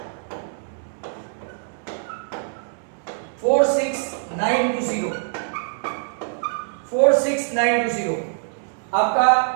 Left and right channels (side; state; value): left; silent; digital silence